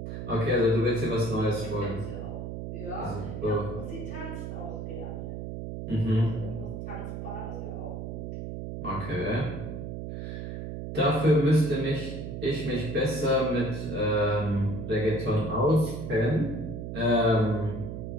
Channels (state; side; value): noise; right; hum, 6 dB below the sound